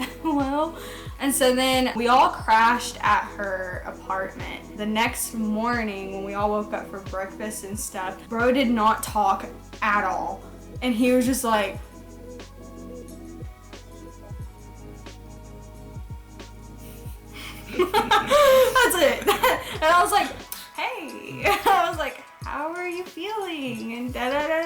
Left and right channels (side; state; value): both; identical; correlation 1.00